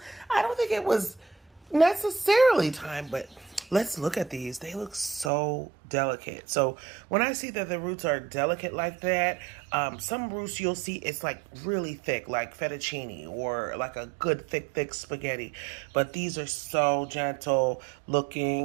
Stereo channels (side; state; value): left; drops out; at 5.3 s